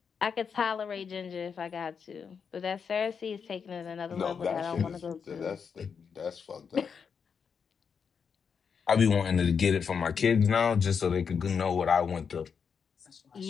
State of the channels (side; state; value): right; quieter; 6.4 dB